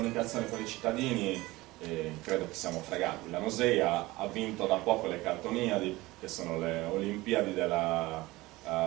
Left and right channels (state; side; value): quieter; left; 19.9 dB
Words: con i cittadini credo che siamo fregati. La Nosei ha vinto da poco le Cartoniadi, che sono le Olimpiadi della